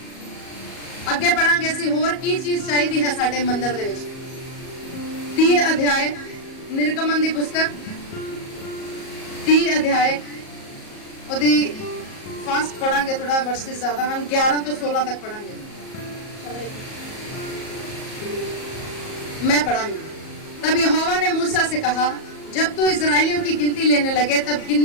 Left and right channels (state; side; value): late; right; 37 ms